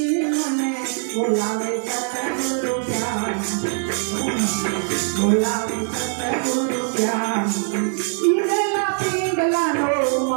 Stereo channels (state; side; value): silent; left; 55 dB below the other